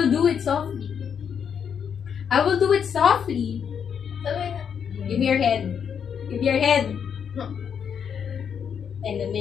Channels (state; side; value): quieter; right; 7.5 dB